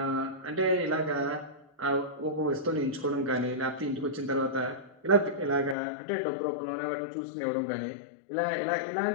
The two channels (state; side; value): drops out; right; at 5.8 s